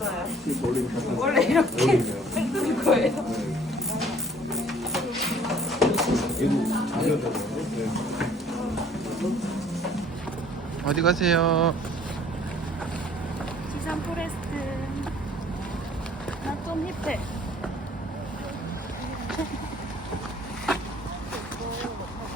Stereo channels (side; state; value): both; normal; correlation 0.55